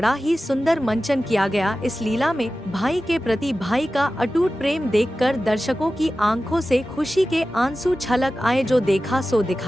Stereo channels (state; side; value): normal; both; correlation 0.94